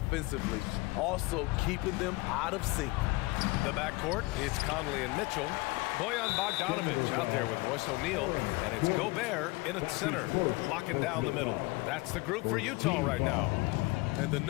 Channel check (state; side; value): quieter; right; 23.3 dB